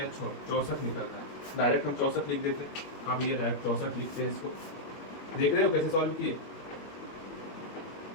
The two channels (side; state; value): right; late; 21 ms